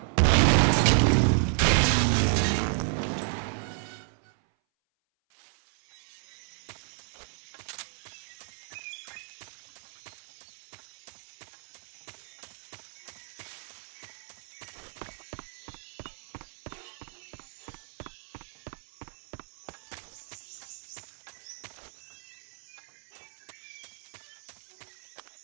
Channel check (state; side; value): silent; left; 56 dB below the other